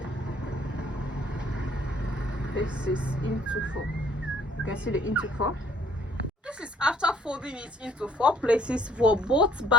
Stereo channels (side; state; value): both; normal; correlation 0.59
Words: This is into 4. You can see the into 4. This is after folding it into 4 places for both